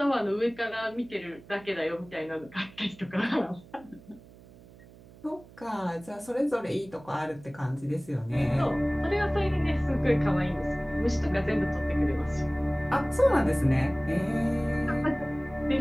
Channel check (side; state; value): right; noise; hum, 22 dB below the sound